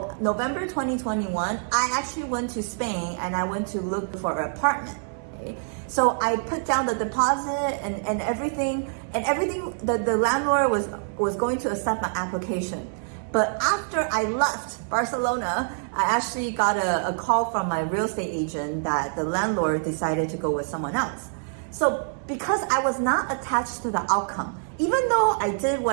November 2021, I actually went to Spain and I went to look for an apartment. Okay? So I put down the deposit and everything, the landlord was going to accept my application. But after I left Barcelona, I actually got a call from my real estate agent that the landlord decided to go with someone else. So because I was not attached to the outcome, even though I did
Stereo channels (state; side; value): silent; left; 59 dB below the other